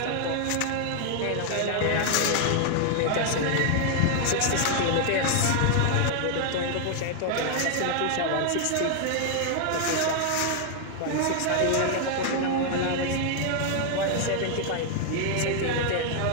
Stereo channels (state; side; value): different; both; correlation 0.00